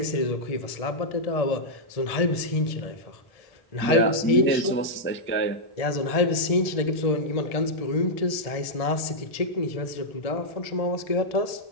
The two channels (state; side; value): late; right; 1.7 ms